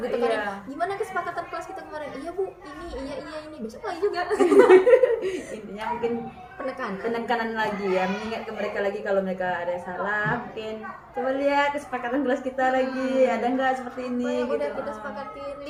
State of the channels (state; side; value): identical; both; correlation 1.00